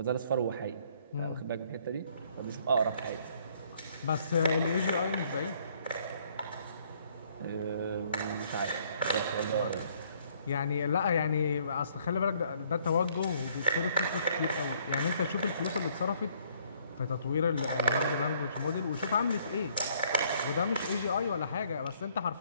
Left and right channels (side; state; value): both; inverted; correlation -0.64